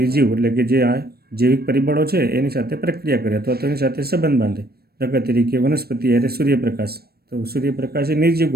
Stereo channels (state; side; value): late; left; 0.46 ms